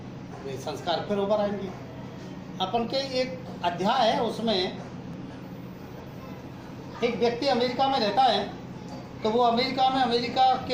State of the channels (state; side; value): identical; both; correlation 1.00